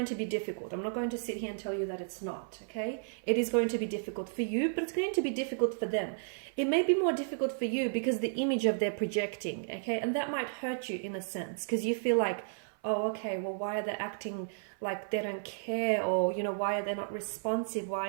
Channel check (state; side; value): silent; left; 56 dB below the other